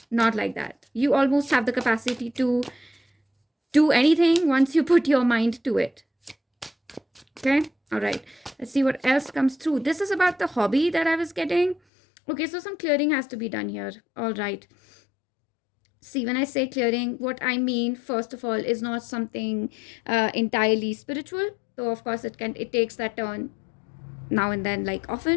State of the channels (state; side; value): drops out; right; at 11.8 s